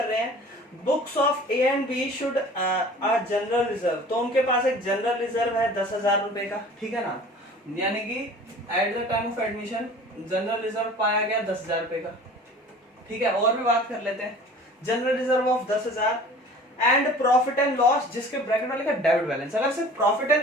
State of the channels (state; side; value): normal; both; correlation 0.44